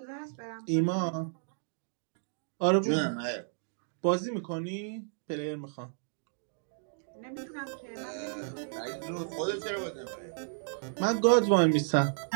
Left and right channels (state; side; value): silent; left; digital silence